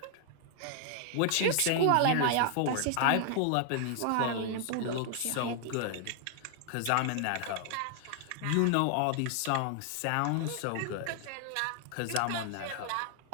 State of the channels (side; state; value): both; different; correlation 0.00